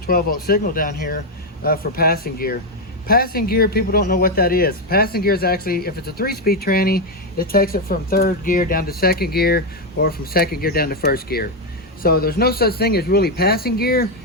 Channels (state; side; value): normal; both; correlation 0.05